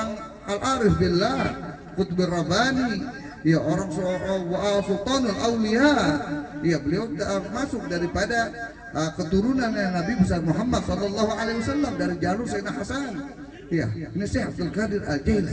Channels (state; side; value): identical; both; correlation 1.00